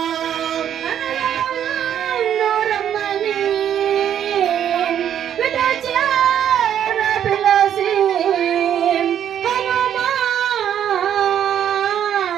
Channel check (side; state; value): left; quieter; 9.8 dB